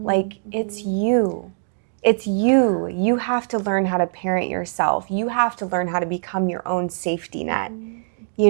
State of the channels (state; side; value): silent; left; digital silence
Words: Like, it's you. It's you. You have to learn how to parent yourself. You have to learn how to become your own safety net,